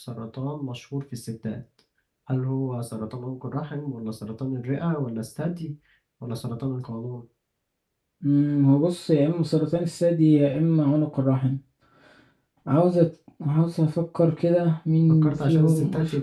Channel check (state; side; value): identical; both; correlation 1.00